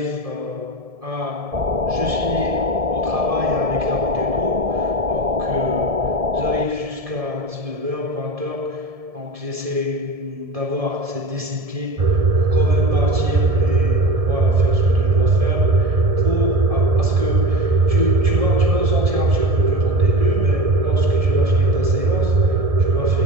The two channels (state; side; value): late; left; 1.7 ms